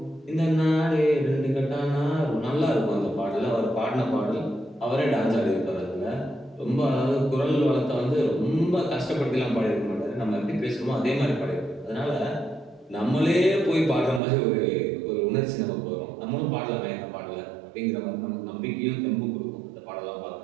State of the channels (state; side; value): drops out; left; at 14.2 s